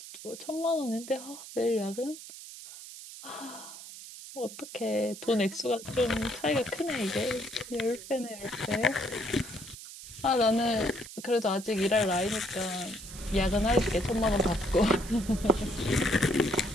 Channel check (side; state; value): right; noise; hiss, 13 dB below the sound